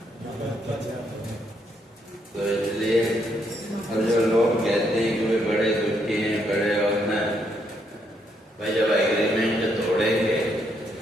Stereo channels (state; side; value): normal; both; correlation 0.75